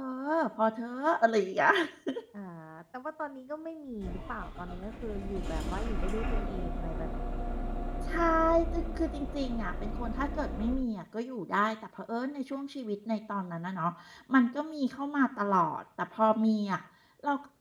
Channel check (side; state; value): both; identical; correlation 1.00